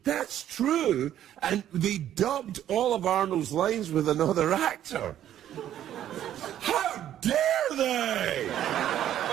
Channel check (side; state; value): left; quieter; 11.3 dB